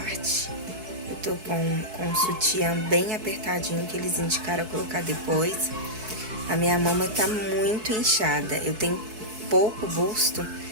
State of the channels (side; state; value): left; late; 4.6 ms